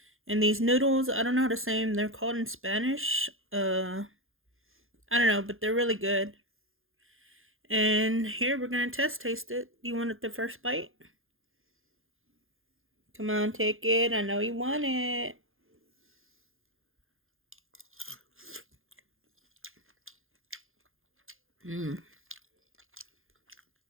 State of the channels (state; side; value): late; left; 0.60 ms